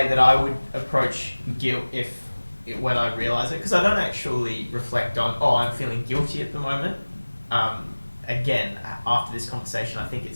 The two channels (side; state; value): both; inverted; correlation -1.00